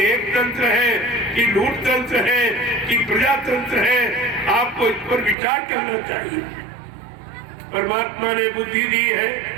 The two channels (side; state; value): left; drops out; at 5.4 s